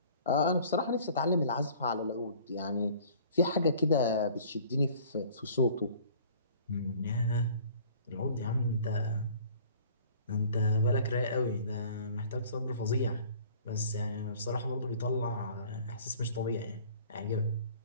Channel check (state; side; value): inverted; both; correlation -0.50